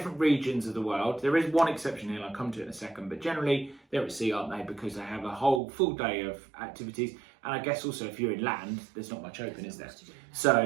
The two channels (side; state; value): left; drops out; at 5.6 s